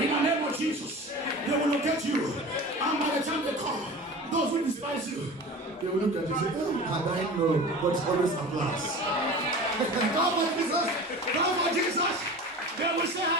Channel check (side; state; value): both; normal; correlation 0.35